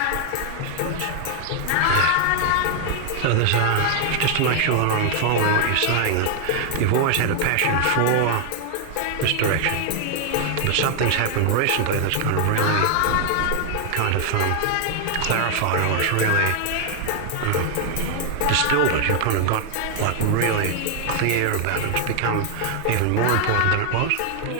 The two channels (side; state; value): both; different; correlation 0.00